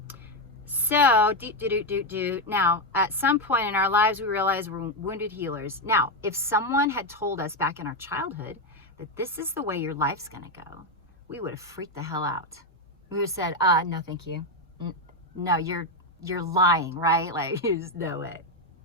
So, now, at some point in our lives, we realize we're wounded healers. Now, if someone had told us back in our childhood that this is the way your life's going to go, we would have freaked the hell out. We would have said, no, thank you. No, you're lying, right? Like, there's no way.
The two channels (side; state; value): both; normal; correlation 0.07